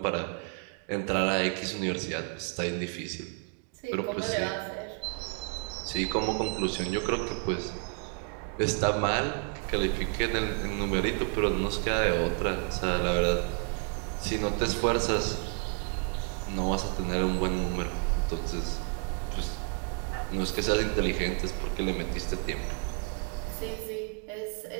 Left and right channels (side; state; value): left; quieter; 37.3 dB